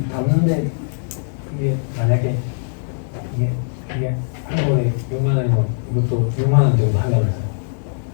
담는데 이게 만약에 이게 한 번에 6만 원이면 이것도 6만 원 정도 하려면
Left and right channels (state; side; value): silent; right; 56 dB below the other